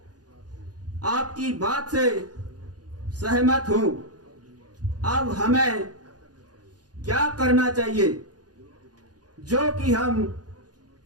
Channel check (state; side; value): late; left; 0.69 ms